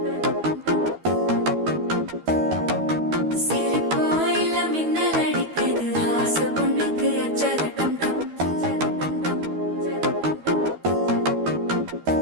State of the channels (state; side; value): late; left; 12 ms